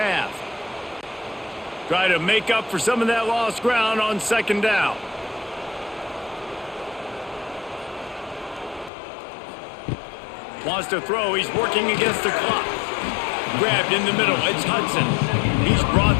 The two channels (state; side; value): drops out; right; at 8.9 s